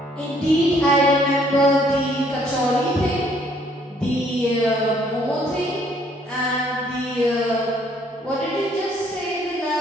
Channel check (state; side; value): normal; both; correlation 0.64